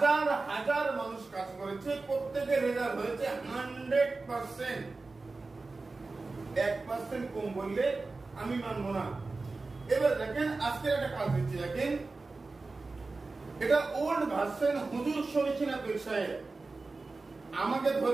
হাজার মানুষ কাজ করেছে, প্রত্যেকের রেজাল্ট হয়েছে 100%। 1% কম বললে আমি মানবো না। এবার দেখেন আজকে একটা কাজ দিচ্ছি, দেখেন এটা ওল্ড ভার্সন হুজুর শরীফিনা পীর সাহেব, আমাকে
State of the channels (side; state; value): left; quieter; 3.7 dB